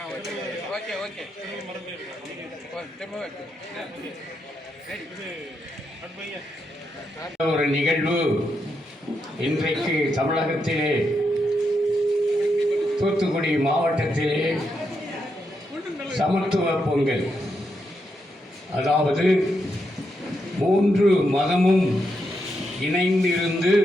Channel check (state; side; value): normal; both; correlation 0.82